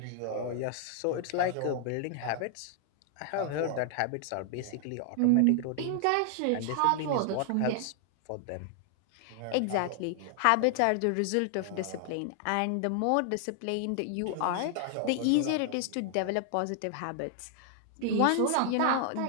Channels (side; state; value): both; different; correlation 0.00